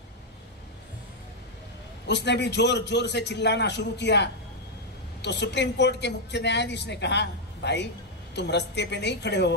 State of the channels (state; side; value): normal; both; correlation -0.01